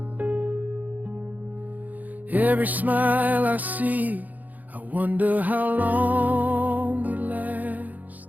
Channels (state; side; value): late; left; 0.081 ms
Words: Every smile I see, I wonder how long it lasts.